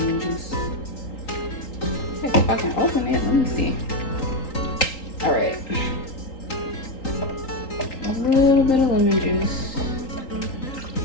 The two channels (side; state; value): right; late; 3.8 ms